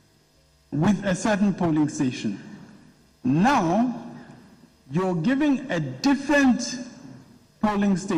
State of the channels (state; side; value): identical; both; correlation 1.00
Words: with a certain polling station. Now, you're giving a different polling